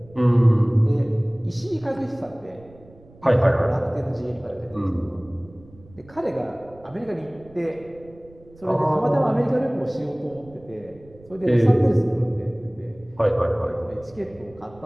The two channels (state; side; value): noise; right; rumble, 25 dB below the sound